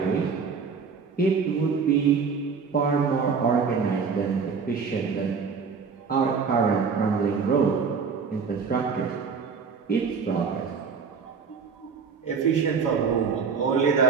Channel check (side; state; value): left; quieter; 5.6 dB